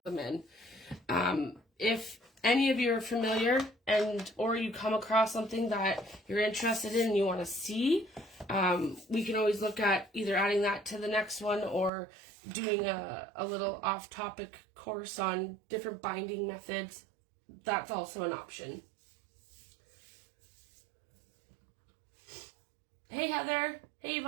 in. If any of you are familiar or you come across something that you're interested in and you want to see, we can always look at either adding that to the next one or doing a little off-topic course on different binding methods. That's also an option. Hey Heather. Hey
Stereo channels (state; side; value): drops out; left; at 11.9 s